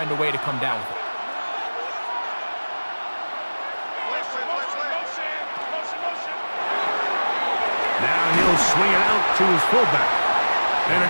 a way to come down with it. Now he'll swing it out to his fullback. And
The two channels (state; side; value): inverted; both; correlation -1.00